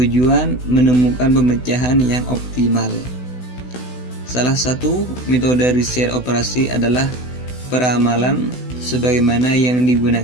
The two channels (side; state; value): right; late; 16 ms